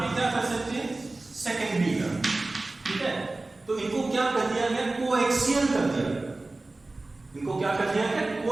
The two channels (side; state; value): left; quieter; 3.1 dB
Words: क्या कर सकते हैं, सेकेंडरी टर्म। ठीक है, तो इनको क्या कर दिया गया, कोएक्सियल कर दिया गया। इनको क्या कर दिया गया,